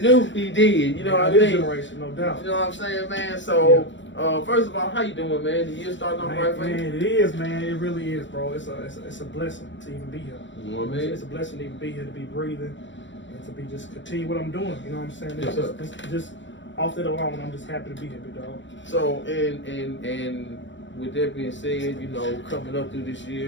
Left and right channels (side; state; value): right; late; 0.54 ms